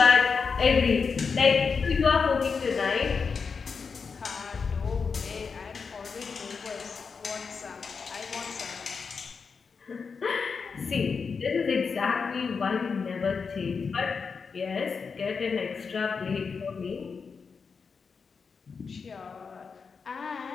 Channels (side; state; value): right; quieter; 5.4 dB